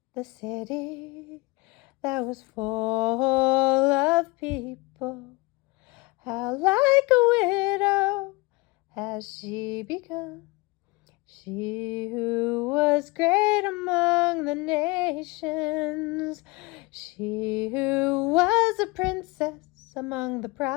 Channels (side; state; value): right; quieter; 25.0 dB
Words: the city that was full of people. How like a widow has she become, she who was great among the nations, she who was a princess among the